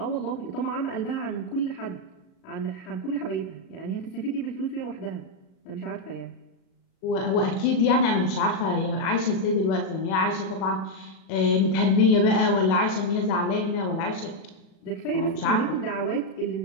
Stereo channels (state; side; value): late; right; 37 ms